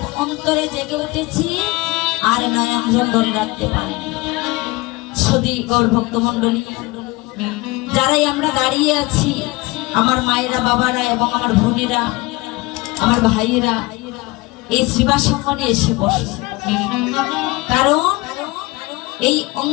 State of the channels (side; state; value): right; quieter; 22.9 dB